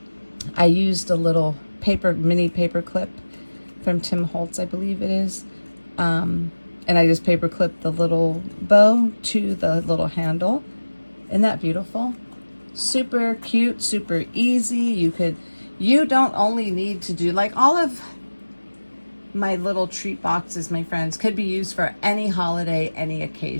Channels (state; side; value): inverted; both; correlation -1.00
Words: mini paper clip from Tim Holtz, I believe it is. And I just paper clipped the little bow to the little handle. Isn't that beautiful? Super cute, super easy. You don't only need to do, like, all of my little treat boxes, my friends, could be used for any holiday, any